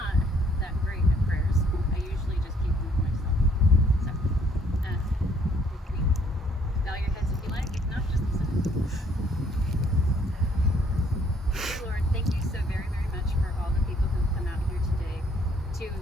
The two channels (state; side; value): normal; both; correlation 0.64